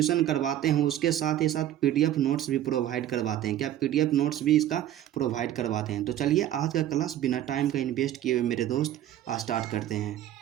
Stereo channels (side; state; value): left; quieter; 12.1 dB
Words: करवाते हैं, उसके साथ ही साथ पीडीएफ नोट्स भी प्रोवाइड करवाते हैं। क्या पीडीएफ नोट्स भी इसका प्रोवाइड करवाते हैं। तो चलिए आज का क्लास बिना टाइम का इन्वेस्ट किए हुए मेरे दोस्त स्टार्ट करते हैं।